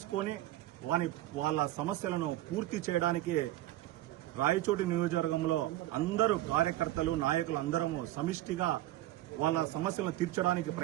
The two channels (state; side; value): quieter; left; 15.2 dB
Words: వాళ్ళ సమస్యలను పూర్తి చేయడానికి రాయచోటి నియోజకవర్గంలో అందరూ కార్యకర్తలు, నాయకులు అందరము సమిష్టిగా వాళ్ళ సమస్యలను తీర్చడానికి